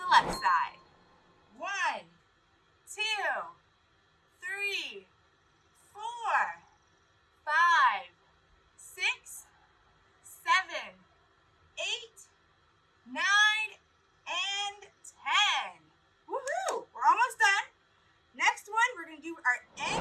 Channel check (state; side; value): identical; both; correlation 1.00